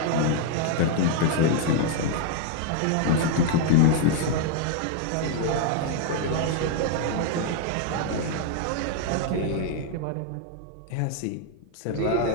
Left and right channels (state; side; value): different; both; correlation 0.00